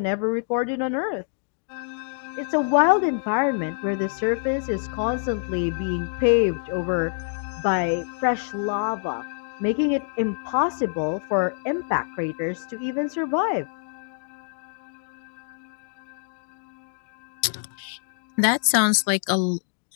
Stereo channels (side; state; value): right; silent; digital silence